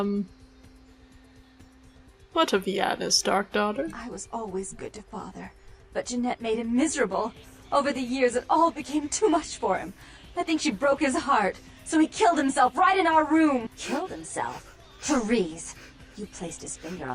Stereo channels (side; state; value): both; identical; correlation 1.00